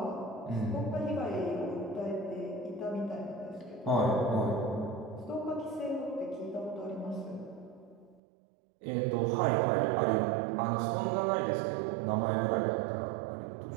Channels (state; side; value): drops out; left; at 8.2 s